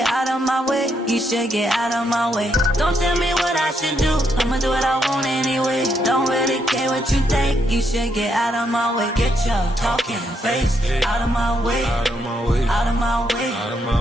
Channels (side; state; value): both; normal; correlation 0.77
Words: out of my way, you should get out of my way. Don't tell me what I should do, I'ma do what I want anyway. Don't really care what you think, you should get out of my way. Get your talking face out of my way, out of my way, out of my way, out of my